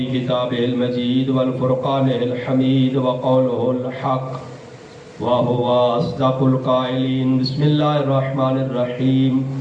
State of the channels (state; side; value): identical; both; correlation 1.00